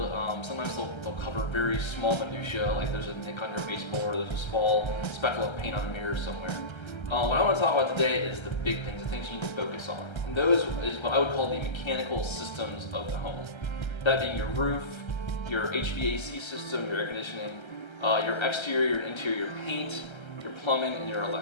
Sometimes they'll cover very small minutia, like there's a nick on your baseboard, there's a small speckle of paint on the mirror somewhere. What I want to talk about today is the big things, the things you need to focus on. And those is what I would call the mechanical systems of the home. That being your roof, your HVAC system, your air conditioning, your exterior and interior paint, your plumbing, and your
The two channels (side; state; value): right; late; 1.3 ms